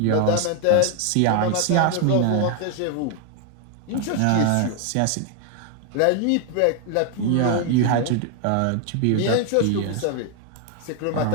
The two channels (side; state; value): both; different; correlation 0.00